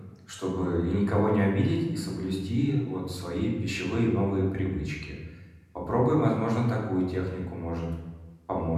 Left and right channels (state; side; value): identical; both; correlation 1.00